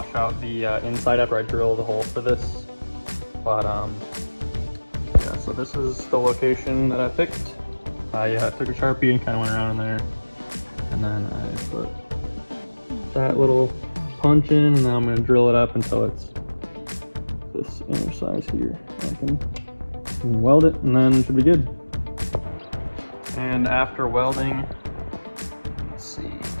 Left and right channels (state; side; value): inverted; both; correlation -1.00